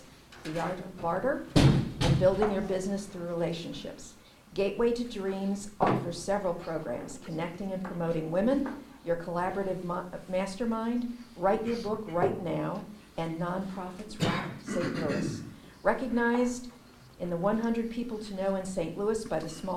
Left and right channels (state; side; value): identical; both; correlation 1.00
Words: The Art of Barter and Building Your Business Through Relationships. Gateway to Dreams offers several programs, connecting and promoting women, your collaborative mastermind, Write Your Book Right Now, and Nonprofits Rock St. Louis. Recognized in the 100 People to Know in St. Louis by the